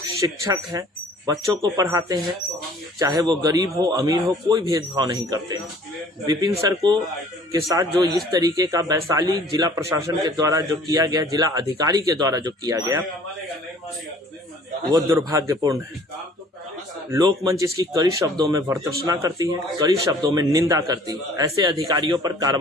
शिक्षक हैं, बच्चों को पढ़ाते हैं, चाहे वो गरीब हो अमीर हो, कोई भेदभाव नहीं करते हैं। विपिन सर को के साथ जो इस तरीके का वैशाली जिला प्रशासन के द्वारा जो किया गया, जिला अधिकारी के द्वारा जो किया गया, वो दुर्भाग्यपूर्ण है। लोकमंच इसकी कड़ी शब्दों में भर्त्सना करती है, कड़ी शब्दों में निंदा करती है। ऐसे अधिकारियों पर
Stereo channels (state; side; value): normal; both; correlation 0.53